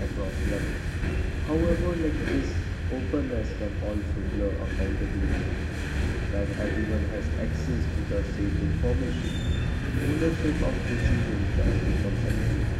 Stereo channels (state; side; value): identical; both; correlation 1.00